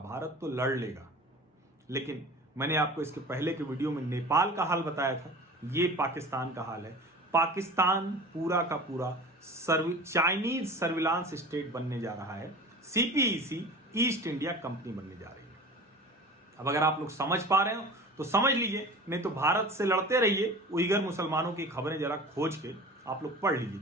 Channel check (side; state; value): both; normal; correlation 0.38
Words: तो लड़ लेगा। लेकिन मैंने आपको इसके पहले के वीडियो में नेपाल का हाल बताया था, ये पाकिस्तान का हाल है। पाकिस्तान पूरा का पूरा चाइनीज सर्विलांस स्टेट बनने जा रहा है। सीपीईसी ईस्ट इंडिया कंपनी बनने जा रही है। अब अगर आप लोग समझ पा रहे हो तो समझ लीजिए, नहीं तो भारत से लड़ते रहिए। उइगर मुसलमानों की खबरें जरा खोज के आप लोग पढ़ लीजिए,